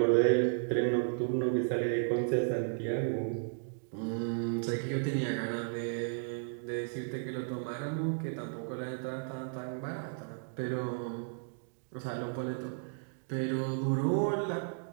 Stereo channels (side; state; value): left; silent; digital silence